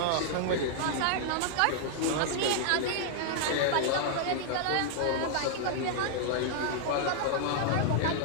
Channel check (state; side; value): different; both; correlation -0.01